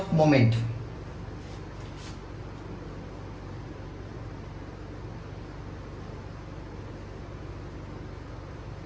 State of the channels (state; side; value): identical; both; correlation 1.00